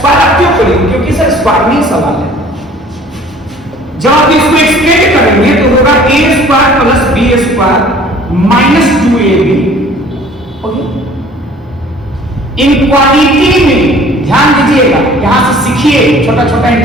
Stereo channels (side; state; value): both; normal; correlation 0.51